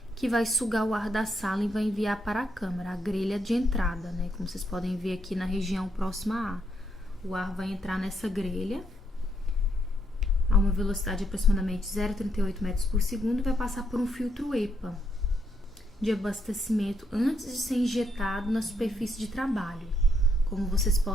que vai sugar o ar da sala e vai enviar para a câmara, a grelha de entrada, né? Como vocês podem ver aqui na região próxima a ar. O ar vai entrar nessa grelha a uma velocidade de aproximadamente 0,38 metros por segundo e vai passar por um filtro EPA de abastecimento antes de ser injetado na superfície de trabalho, como vocês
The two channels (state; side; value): normal; both; correlation 0.75